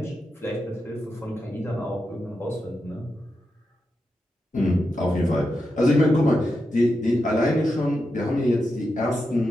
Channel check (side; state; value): both; normal; correlation 0.87